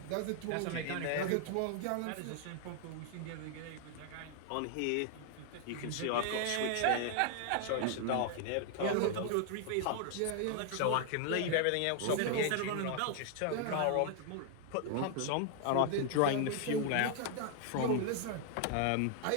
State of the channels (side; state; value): both; different; correlation 0.00